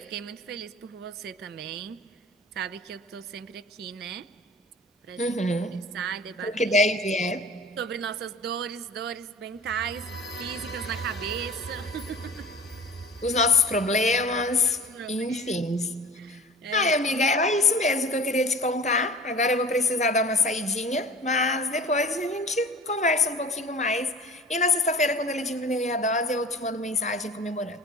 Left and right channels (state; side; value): normal; both; correlation 0.40